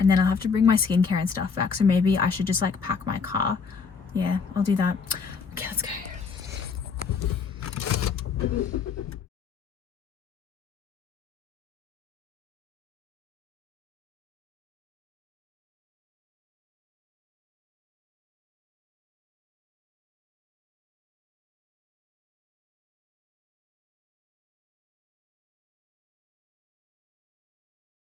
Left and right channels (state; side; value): quieter; right; 5.6 dB